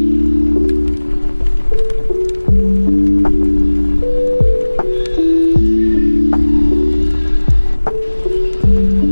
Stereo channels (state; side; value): inverted; both; correlation -1.00